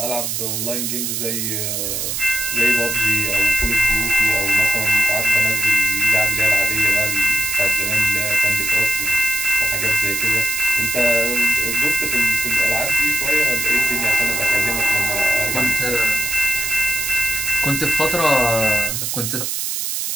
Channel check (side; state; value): right; noise; hiss, 2 dB below the sound